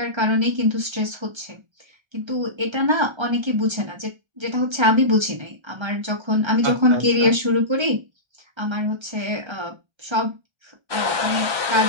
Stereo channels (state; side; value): late; left; 1.3 ms